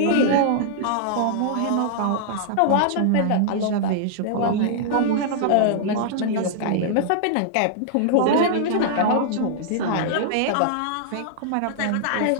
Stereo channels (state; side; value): different; both; correlation -0.01